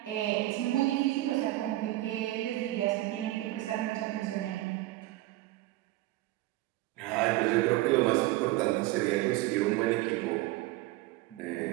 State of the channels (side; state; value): left; quieter; 17.6 dB